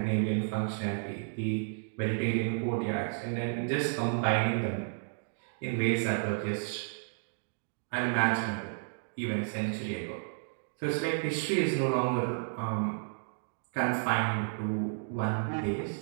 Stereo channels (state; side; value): silent; left; digital silence